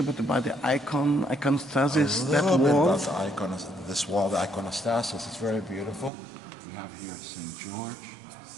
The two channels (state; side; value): drops out; left; at 6.1 s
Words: bit about the iconostasis? That wall? About this wall, the iconostasis. It's very beautiful. We have here St. George,